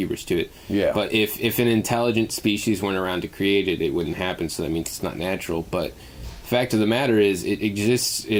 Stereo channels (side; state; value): both; identical; correlation 1.00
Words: to it. Yeah. But if an intelligent species weren't around to create it, it wouldn't happen. So that means it's not natural. But the fact of the matter is, it exists